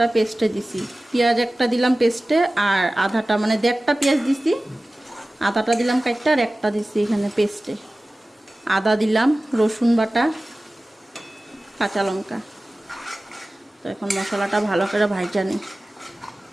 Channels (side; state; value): both; normal; correlation 0.97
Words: পেস্টে দিছি। পেঁয়াজ একটা দিলাম পেস্টে, আর আধাটা মানে 1.5টা পেঁয়াজ দিছি, আধাটা দিলাম কাইটা, আর একটা দিছি এখানে পেস্টে। আদা দিলাম, রসুন বাটা, কাঁচা লঙ্কা। তো এখন মশলাটা ভালো করে ভাজা নিই।